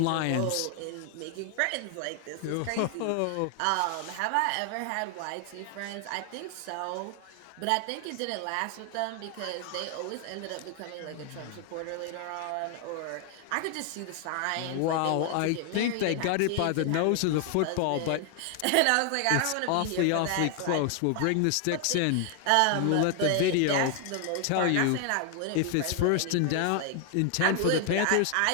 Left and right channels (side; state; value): both; different; correlation 0.00